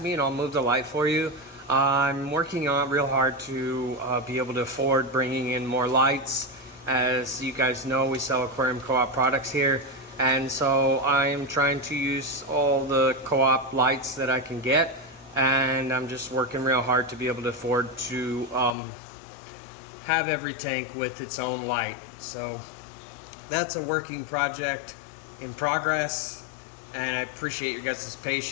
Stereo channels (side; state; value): right; drops out; at 18.8 s